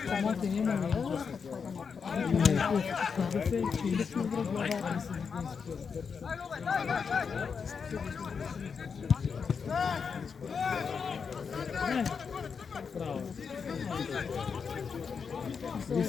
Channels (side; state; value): right; quieter; 5.9 dB